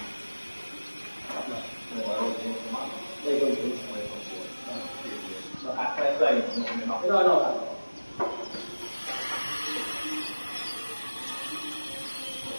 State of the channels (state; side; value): inverted; both; correlation -1.00